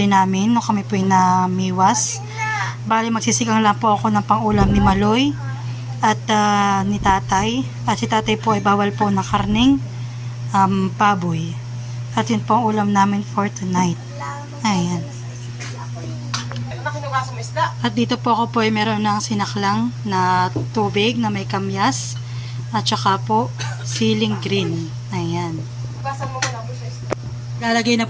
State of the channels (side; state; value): both; identical; correlation 1.00